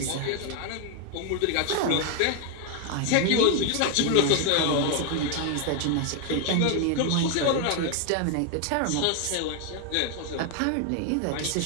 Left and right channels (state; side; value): different; both; correlation 0.01